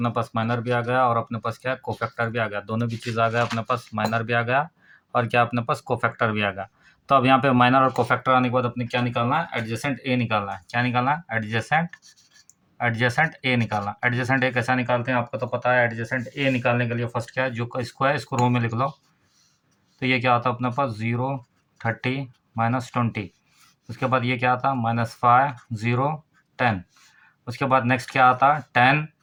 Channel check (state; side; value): identical; both; correlation 1.00